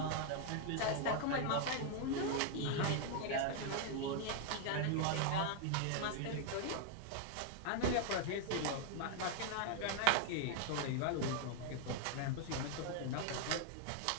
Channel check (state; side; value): different; both; correlation 0.00